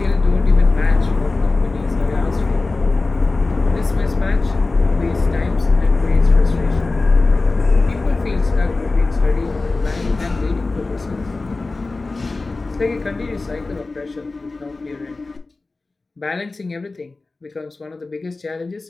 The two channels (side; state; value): right; quieter; 3.5 dB